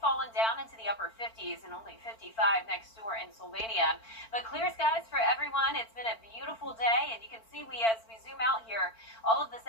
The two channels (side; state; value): right; late; 4.5 ms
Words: fallen down into the upper 50s and only 55 next door in Sylvania. But clear skies for everyone. It's been a beautiful day, and you can see as we zoom out here, all of the